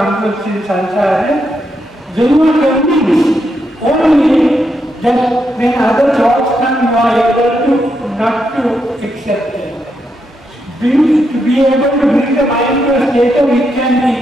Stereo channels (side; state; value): both; normal; correlation 0.82